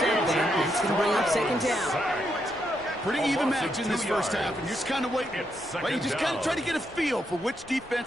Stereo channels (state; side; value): noise; left; rumble, 25 dB below the sound